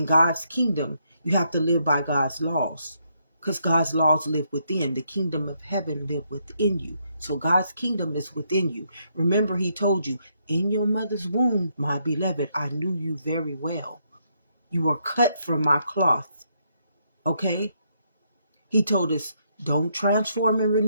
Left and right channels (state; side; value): inverted; both; correlation -0.76